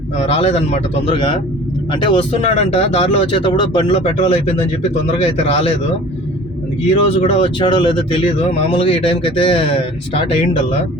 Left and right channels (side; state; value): both; normal; correlation 0.45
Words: రాలేదన్నమాట తొందరగా. అంటే వస్తున్నాడంట, దారిలో వచ్చేటప్పుడు బండిలో పెట్రోల్ అయిపోయిందని చెప్పి తొందరగా అయితే రాలేదు. ఈ రోజు కూడా వచ్చాడో లేదో తెలియదు. మామూలుగా ఈ టైంకి అయితే స్టార్ట్ అయ్యిండల్లా.